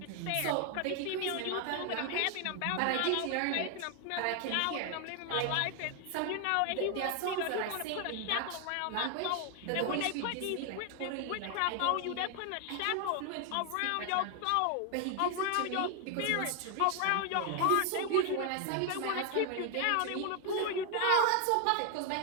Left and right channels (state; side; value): different; both; correlation 0.00